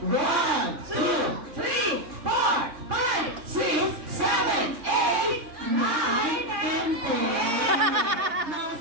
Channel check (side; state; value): left; late; 3.6 ms